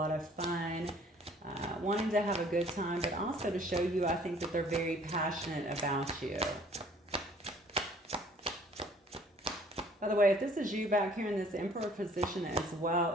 of fun, wanting to have a good time, but also to show you, I think, that they're very passionate about you. By the way, if this is you back here in this Emperor position as well,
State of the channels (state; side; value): normal; both; correlation 0.56